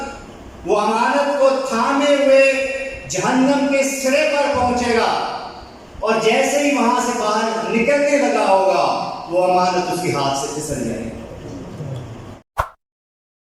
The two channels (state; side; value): identical; both; correlation 1.00